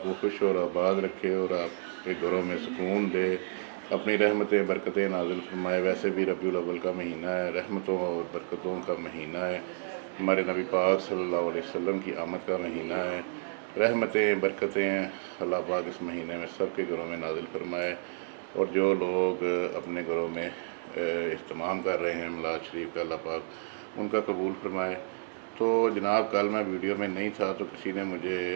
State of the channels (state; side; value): silent; left; digital silence